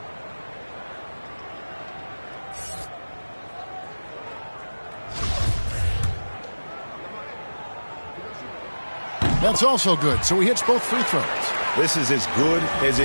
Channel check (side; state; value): both; inverted; correlation -1.00